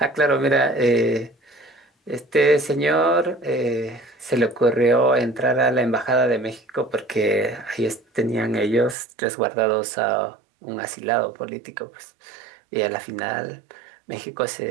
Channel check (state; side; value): drops out; left; at 9.0 s